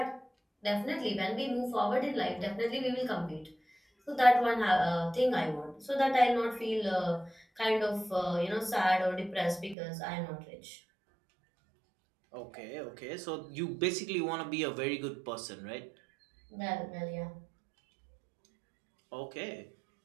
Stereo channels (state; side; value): drops out; left; at 9.8 s